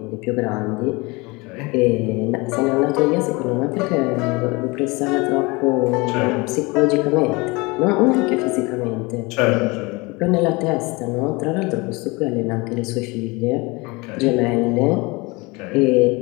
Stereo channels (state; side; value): quieter; right; 25.3 dB